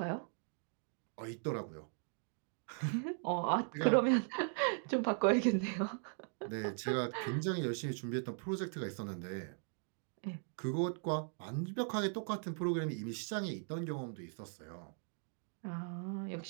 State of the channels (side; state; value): left; silent; 52 dB below the other